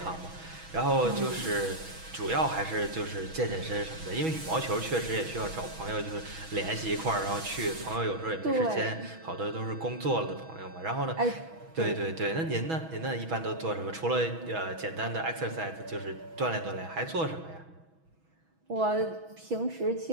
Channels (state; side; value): late; left; 6.2 ms